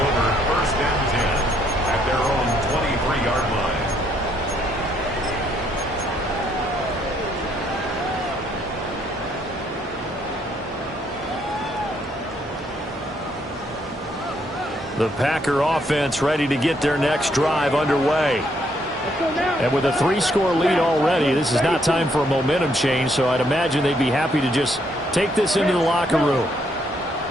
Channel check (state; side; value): normal; both; correlation 0.71